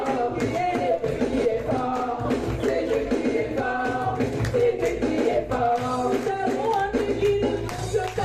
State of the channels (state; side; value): identical; both; correlation 1.00